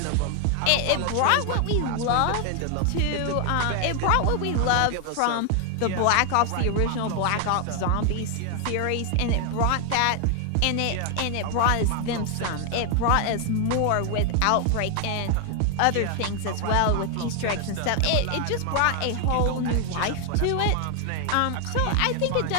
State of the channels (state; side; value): different; both; correlation 0.00